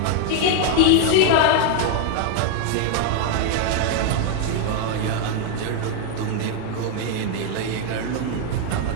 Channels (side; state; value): both; different; correlation 0.01